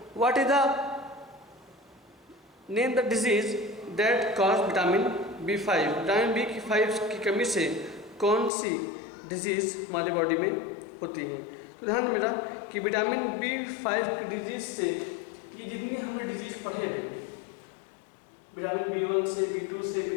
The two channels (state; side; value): drops out; right; at 8.5 s